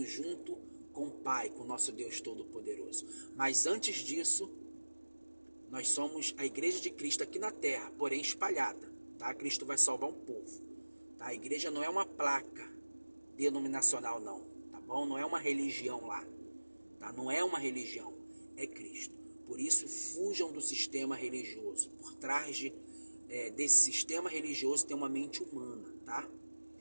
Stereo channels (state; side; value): inverted; both; correlation -1.00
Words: junto com o Pai, com o nosso Deus Todo-Poderoso. Mas antes disso, nós somos a igreja de Cristo aqui na terra, porém espalhada. Tá? Cristo vai salvar um povo. Tá? A igreja não é uma placa denominacional, não. Tá bom? Não é uma religião lá. Tá? Não é uma religião. É Cristo. Por isso, fujam do sistema religioso. Por trás desse sistema religioso tem uma mente humana. Tá?